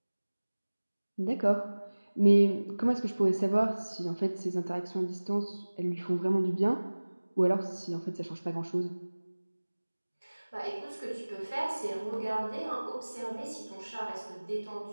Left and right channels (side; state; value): both; inverted; correlation -1.00